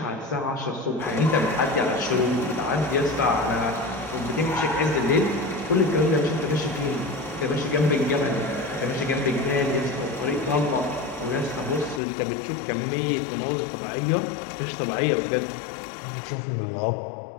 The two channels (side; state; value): right; drops out; at 12.0 s